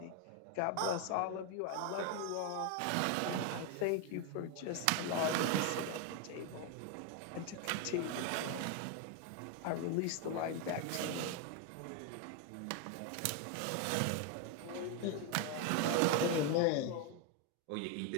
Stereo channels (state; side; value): different; both; correlation 0.01